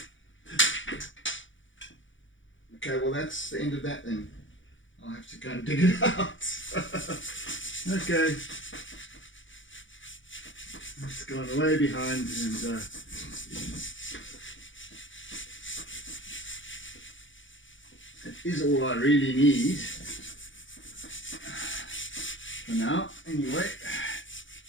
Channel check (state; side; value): late; right; 0.56 ms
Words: Okay, well that's the end of that then. I'll have to go and dig it out. Okay. It's gone way behind and that is all I really need for now. Anyway,